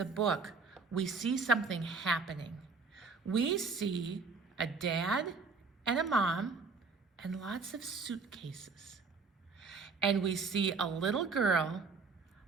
book, we see something happening. We see a dad and a mom and lots of suitcases. And we see a little girl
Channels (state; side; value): quieter; left; 4.5 dB